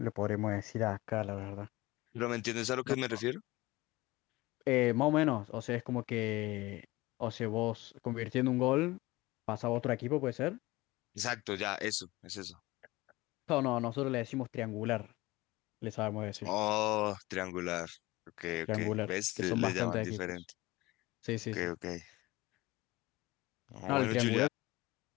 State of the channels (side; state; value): right; quieter; 20.1 dB